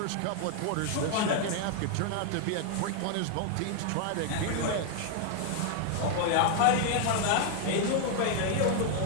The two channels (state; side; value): different; both; correlation 0.00